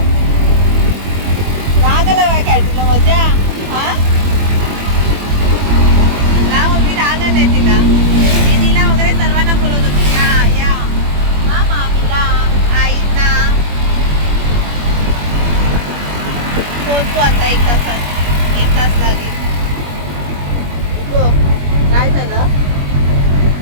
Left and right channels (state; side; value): late; left; 21 ms